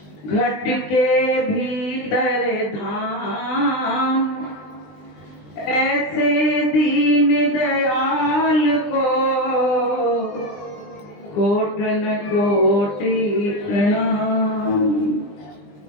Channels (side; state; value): right; late; 20 ms